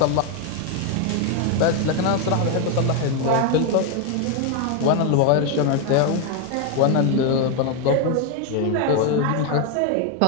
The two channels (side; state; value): both; different; correlation 0.01